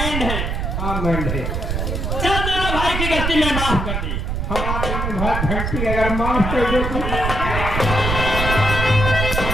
है। हाँ मैंड है। चल दोनों भाई की गलती मैं माफ कर दी। हमारे में भाई घंटी अगर माफ कर दो तो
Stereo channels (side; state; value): right; noise; rumble, 2 dB below the sound